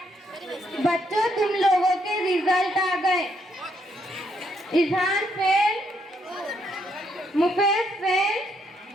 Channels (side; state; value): both; normal; correlation 0.74